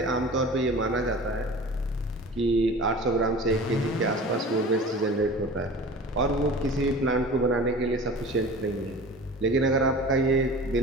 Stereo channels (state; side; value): normal; both; correlation 0.39